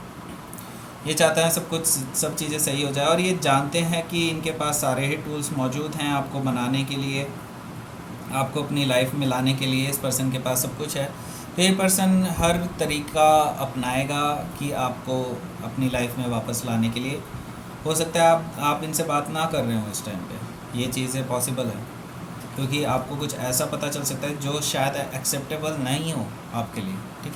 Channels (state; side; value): identical; both; correlation 1.00